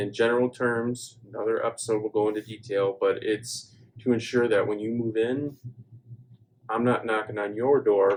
general terms, another episode will go into detail, but it's to ensure that when you move in, I'm not knocking on your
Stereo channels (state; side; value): identical; both; correlation 1.00